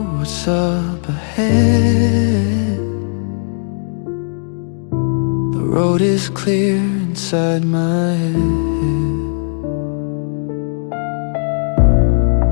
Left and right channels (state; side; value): silent; right; 68 dB below the other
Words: what's up ahead. The road is clear inside my head.